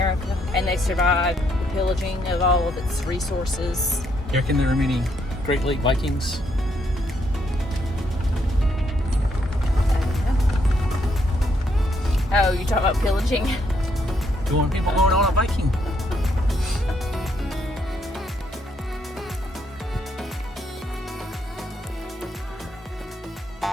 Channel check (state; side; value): normal; both; correlation 0.74